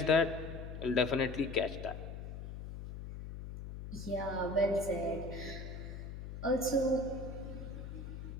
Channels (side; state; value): left; noise; hum, 9 dB below the sound